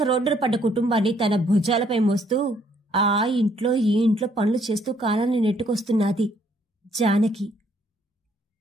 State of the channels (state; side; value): normal; both; correlation 0.67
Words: రోడ్డున పడ్డ కుటుంబాన్ని తన భుజాలపై మోస్తూ ఆ ఇంట్లో ఈ ఇంట్లో పనులు చేస్తూ కాలాన్ని నెట్టుకొస్తున్నది జానకి.